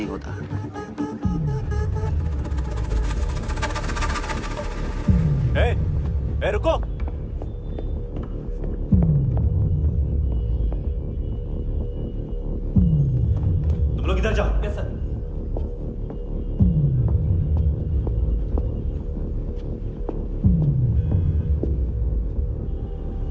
होता। ए, रुको। तुम लोग इधर जाओ। Yes sir.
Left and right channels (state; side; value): identical; both; correlation 1.00